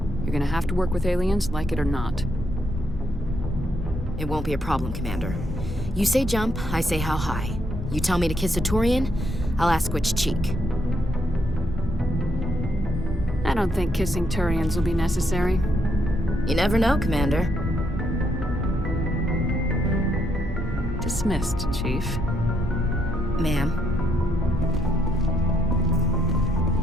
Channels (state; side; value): normal; both; correlation 0.75